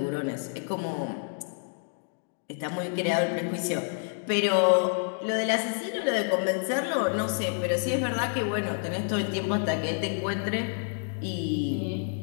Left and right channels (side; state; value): right; silent; 59 dB below the other